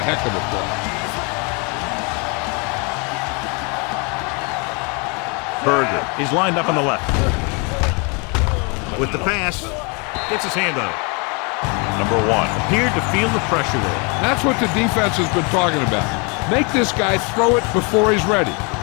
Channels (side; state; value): right; quieter; 32.8 dB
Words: of a play. Berger is lined up on the left. With the pass, gets his hand on it. Number 1 appeared to feel the pressure there. That's what the defense has been talking about. Make this guy throw it before he's ready.